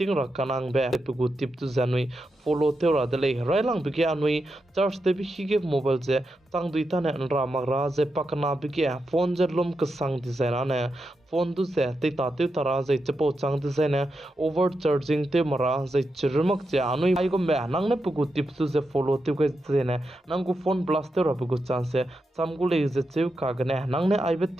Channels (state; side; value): normal; both; correlation 0.87